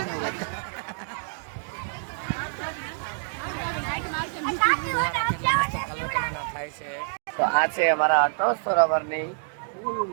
નહીં ફુવારા કેટલા મસ્ત કલર કલરના થાય છે તો આ છે અમારા અટલ સરોવરની ફૂલ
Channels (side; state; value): left; silent; digital silence